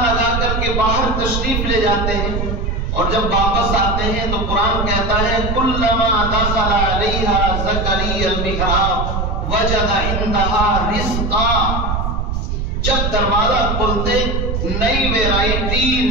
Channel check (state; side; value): noise; right; rumble, 1 dB below the sound